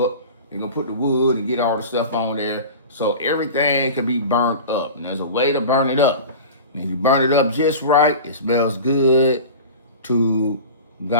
up. They're going to put the wood and get all the stuff on there so everything can be burnt up. And there's a way to burn it up. And if you burn it up just right, it smells good to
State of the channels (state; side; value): inverted; both; correlation -0.34